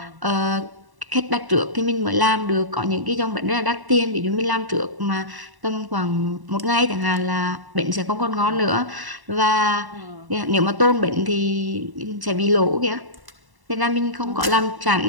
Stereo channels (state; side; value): late; left; 1.1 ms